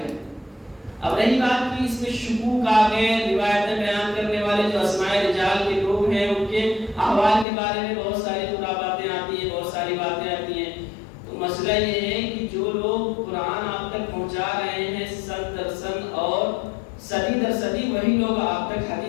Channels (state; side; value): drops out; right; at 7.5 s